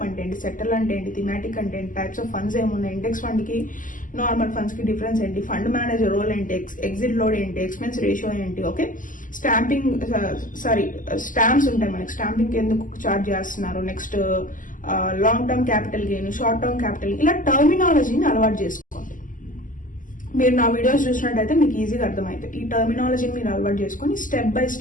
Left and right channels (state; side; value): late; right; 0.38 ms